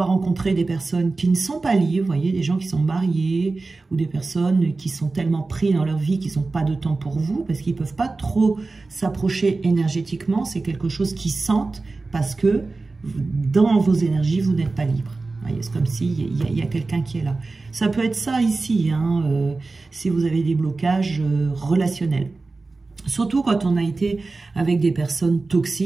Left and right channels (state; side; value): quieter; left; 3.6 dB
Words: rencontrer des personnes qui ne sont pas liées, vous voyez, des gens qui sont mariés, ou des personnes qui sont tellement pris dans leur vie qu'ils n'ont pas de temps pour vous, parce qu'ils ne peuvent pas trop s'approcher énergétiquement, c'est quelque chose qu'ils sentent, parce que dans vos énergies, vous n'êtes pas libre. C'est comme s'il y a quelqu'un qui est là. Ça peut être ça ici, hein, si vous avez des blocages relationnels. Surtout quand on a été avec des personnes